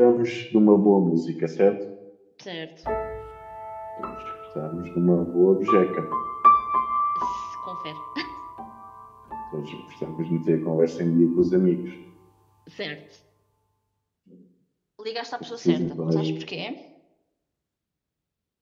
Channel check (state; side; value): identical; both; correlation 1.00